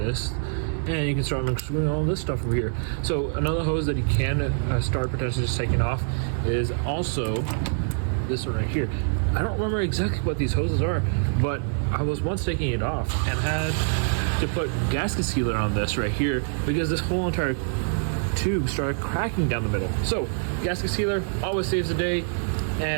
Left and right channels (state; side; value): silent; left; digital silence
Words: And you can start unscrewing all this stuff over here. So another hose that you can start potentially just taking off is also this one right here. I don't remember exactly what these hoses are, but I was once taking it off and had to put gasket sealer on this right here because this whole entire tube started cracking down the middle. So gasket sealer always saves the day,